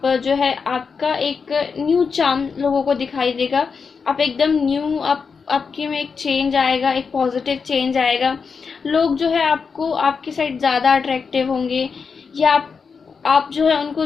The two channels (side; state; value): right; quieter; 5.5 dB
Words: जो है आपका एक न्यू चार्म लोगों को दिखाई देगा। आप एकदम न्यू, आपके में एक चेंज आएगा, एक पॉजिटिव चेंज आएगा। लोग जो है आपको आपके साइड ज़्यादा अट्रैक्टिव होंगे, या आप जो है उनको